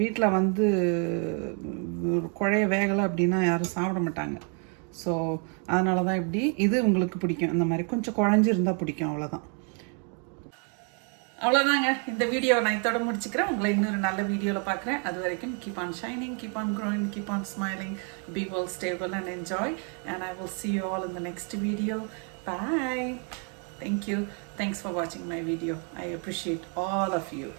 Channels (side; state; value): left; quieter; 39.4 dB